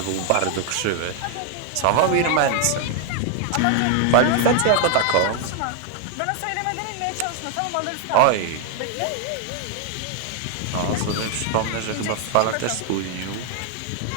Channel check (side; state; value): both; different; correlation 0.00